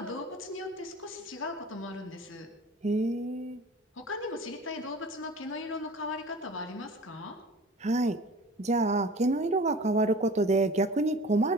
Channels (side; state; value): both; normal; correlation 0.42